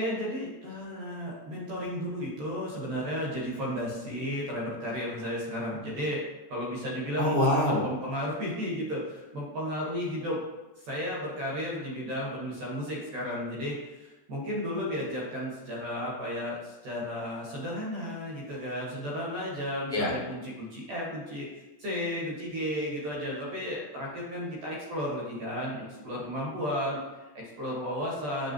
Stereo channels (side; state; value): left; late; 14 ms